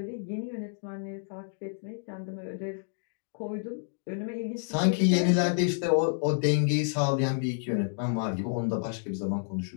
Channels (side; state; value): right; silent; digital silence